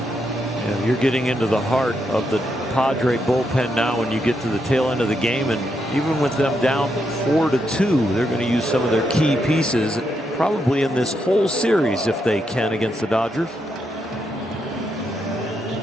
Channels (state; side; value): normal; both; correlation 0.81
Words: Yeah, you're getting into the heart of the Padre bullpen now when you get to the tail end of the game, and even with them down 4-2, they're going to use some of their key pieces probably in this whole series if they can against the Dodgers.